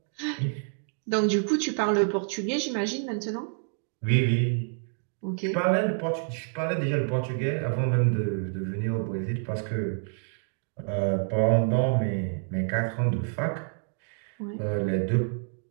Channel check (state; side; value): silent; left; 59 dB below the other